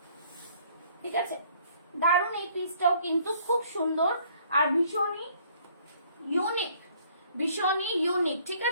ঠিক আছে। দারুণ এই পিসটাও কিন্তু খুব সুন্দর আর ভীষণই ইউনিক, ঠিক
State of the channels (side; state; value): both; inverted; correlation -0.60